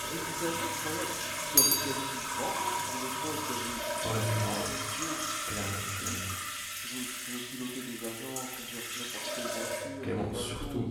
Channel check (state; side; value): identical; both; correlation 1.00